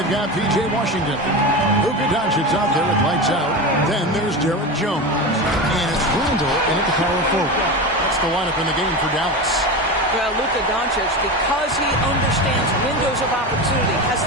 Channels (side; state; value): both; normal; correlation 0.23